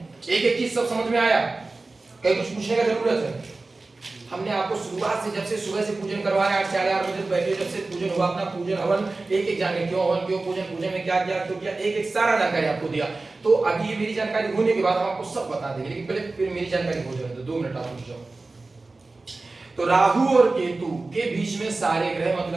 एक एक चीज सब समझ में आया, कहीं कुछ पूछने का जरूरत है? हमने आपको शुरुआत से, जब से सुबह से पूजन करवा रहे 8 साढ़े 8 बजे बैठे, जब से पूजन हुआ अपना पूजन हवन एक एक जाने क्यों हवन क्यों पूजन, पूजन में क्या किया क्यों किया, एक एक सारा जानकारी आपको दिया। तो अभी ये मेरी जानकारी होने के बाद हम आपको सब बता देंगे, लेकिन पहले फिर मेरी जानकारी हो जाए तो 2 मिनट आप रुक जाओ। तो राहु और केतु के बीच में सारे ग्रह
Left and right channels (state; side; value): quieter; left; 3.4 dB